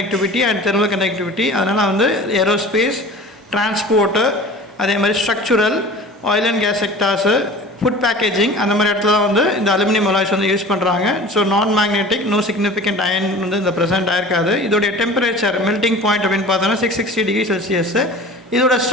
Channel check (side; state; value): both; normal; correlation 0.40